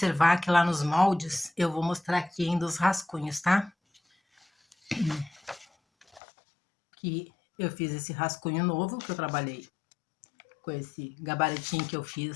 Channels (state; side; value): drops out; right; at 6.2 s